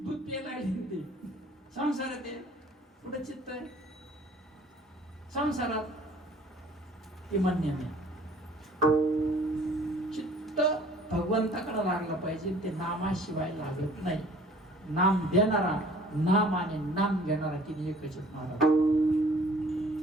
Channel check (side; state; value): both; normal; correlation 0.53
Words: दूध पियला ते संसारात आहे. कुठे चित्त आहे संसारात, ते मान्य नाही. चित्त भगवंताकडे लागला पाहिजे, ते नामाशिवाय लागत नाही. नाम देणारा, नाम आणि नाम घेणारा तिने एकच आहेत महाराज,